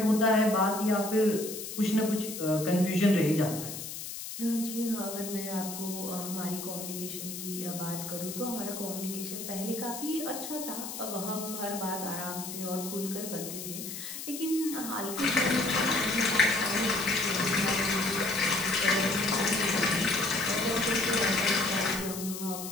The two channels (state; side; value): noise; left; hiss, 8 dB below the sound